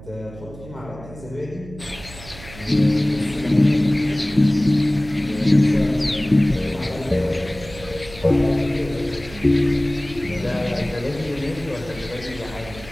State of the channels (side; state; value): right; noise; hum, 16 dB below the sound